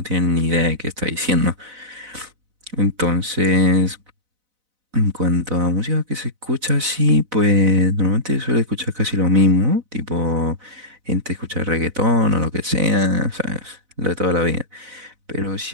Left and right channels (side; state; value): left; late; 4.0 ms